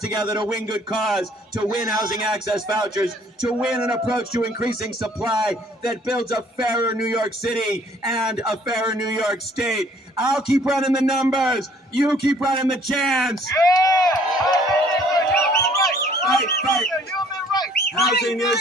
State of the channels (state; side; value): normal; both; correlation 0.58